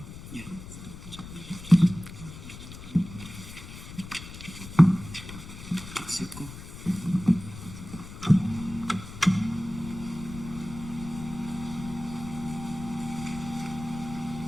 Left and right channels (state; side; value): noise; left; rumble, 12 dB below the sound